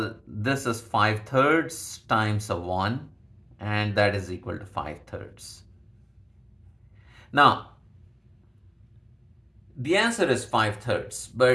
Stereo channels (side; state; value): both; identical; correlation 1.00